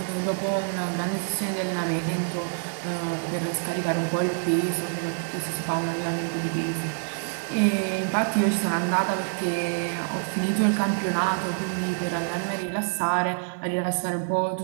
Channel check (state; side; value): silent; left; 56 dB below the other